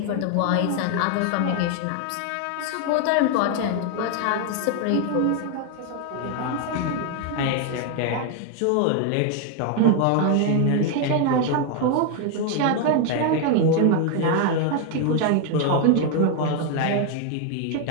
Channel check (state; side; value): different; both; correlation 0.00